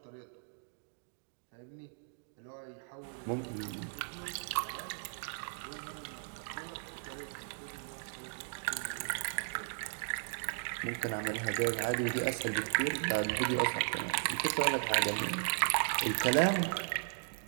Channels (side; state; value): left; silent; digital silence